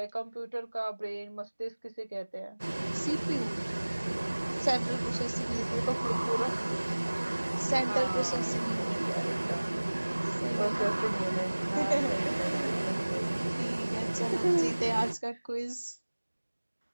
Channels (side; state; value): both; inverted; correlation -1.00